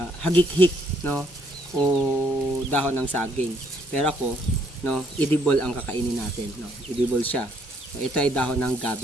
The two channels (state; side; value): normal; both; correlation 0.69